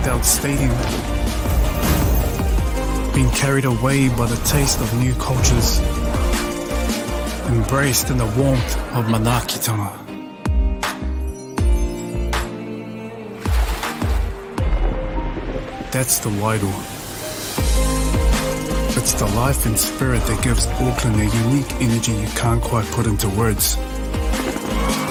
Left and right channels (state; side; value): identical; both; correlation 1.00